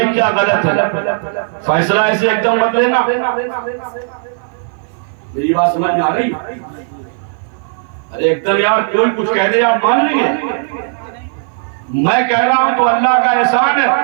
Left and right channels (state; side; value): silent; left; 55 dB below the other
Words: کیا غلط ہے۔ فیصلہ ایسے ایک دم مت لینا۔ میری بات سمجھ میں آ رہی؟ ارے ایک دم یار کوئی کچھ کہہ دے آپ مان لیں گے؟ میں کہہ رہا ہوں تو اللہ کا احسان ہے،